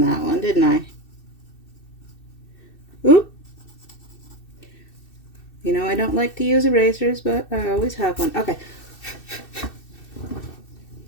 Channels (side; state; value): right; late; 2.6 ms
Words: that one, didn't I? Oop. You know, I don't like to use erasers, but I always have one. Okay.